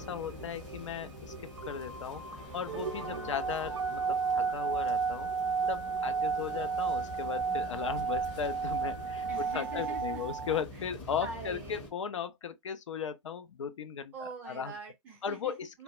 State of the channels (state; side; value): normal; both; correlation 0.36